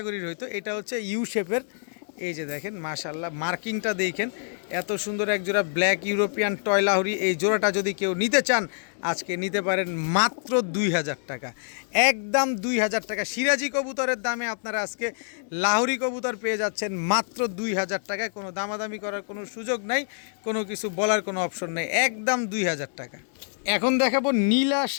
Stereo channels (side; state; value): right; silent; digital silence